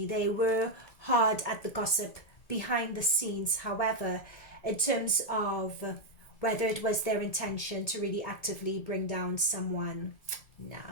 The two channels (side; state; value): right; late; 1.7 ms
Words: They were hard at the gossip behind the scenes. However, in terms of whether it was their intention to really actively bring down someone,